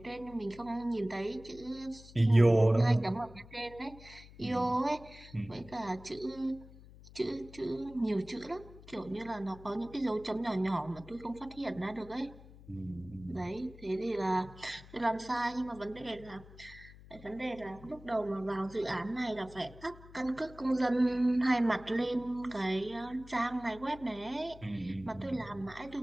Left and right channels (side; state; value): left; noise; hum, 19 dB below the sound